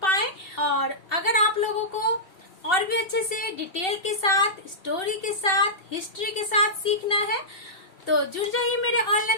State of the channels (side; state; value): right; late; 2.7 ms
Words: पाएं। और अगर आप लोगों को और भी अच्छे से डिटेल के साथ, स्टोरी के साथ, हिस्ट्री के साथ सीखना है तो जुड़ जाइए मेरे